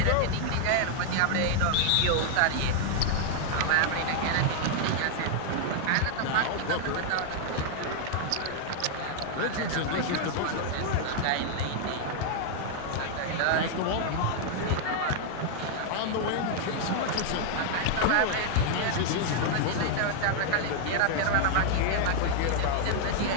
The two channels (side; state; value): both; different; correlation 0.00